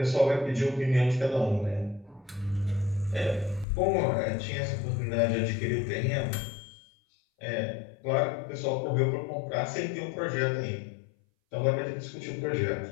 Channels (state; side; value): drops out; right; at 3.7 s